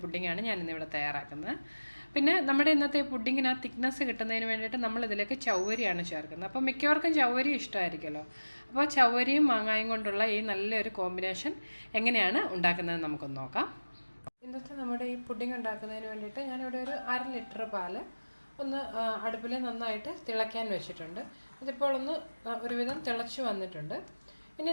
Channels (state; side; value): inverted; both; correlation -1.00